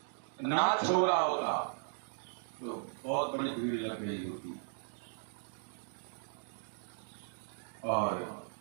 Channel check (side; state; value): left; silent; digital silence